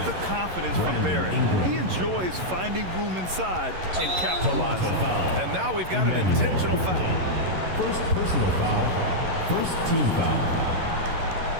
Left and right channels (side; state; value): left; late; 11 ms